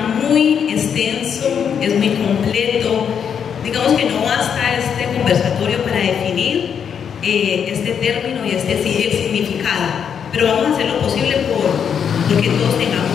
muy extenso, es muy completo. Digamos que no basta este conversatorio para definir este término y el significado, pero vamos a hacer lo posible porque todos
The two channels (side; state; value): right; quieter; 7.6 dB